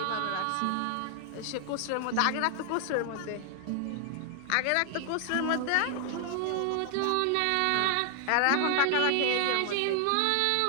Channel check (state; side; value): different; both; correlation 0.00